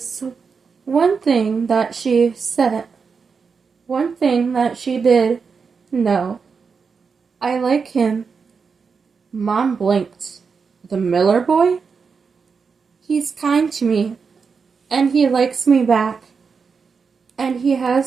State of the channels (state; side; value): quieter; left; 5.5 dB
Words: one thing that she did know. I like him. Mom blinked. The Miller boy? He's kind to me, and he likes me back, and he